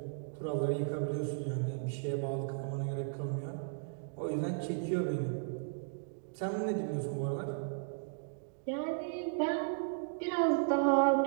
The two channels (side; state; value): left; silent; digital silence